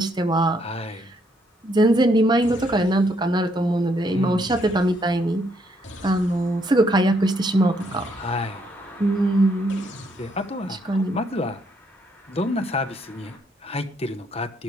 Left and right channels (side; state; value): both; normal; correlation 0.72